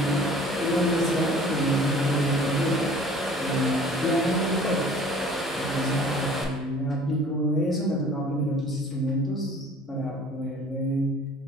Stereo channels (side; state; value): both; normal; correlation 0.49